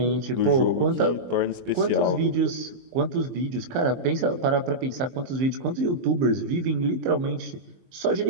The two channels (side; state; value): left; late; 23 ms